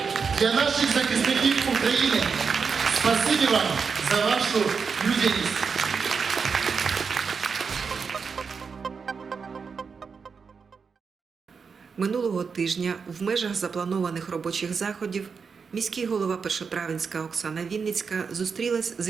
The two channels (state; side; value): quieter; left; 5.6 dB